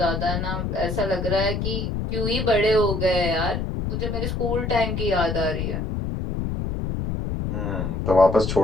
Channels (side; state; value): left; noise; rumble, 2 dB below the sound